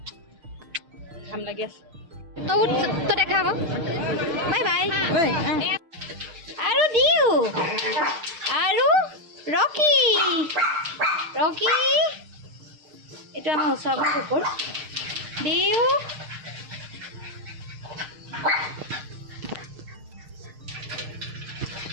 ঘাম লাগি আছে তো দেখা আকৌ বাই আৰু দিও আৰু ৰকি এইটো আমাৰ ওচৰৰ কুকুৰ দিও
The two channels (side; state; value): left; late; 6.5 ms